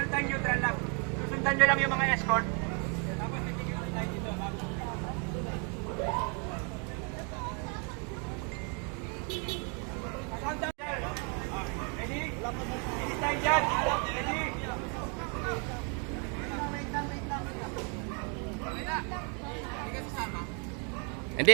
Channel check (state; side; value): quieter; left; 37.2 dB